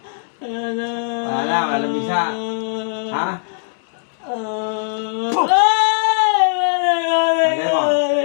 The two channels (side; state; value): right; silent; 66 dB below the other